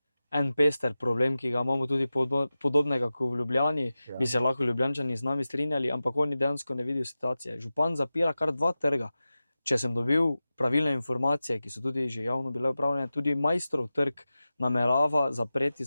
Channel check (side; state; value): both; inverted; correlation -0.94